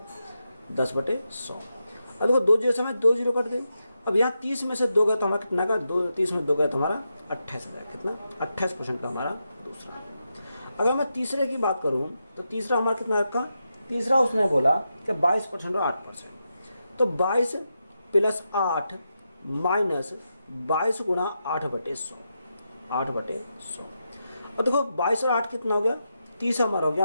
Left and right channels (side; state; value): both; inverted; correlation -0.86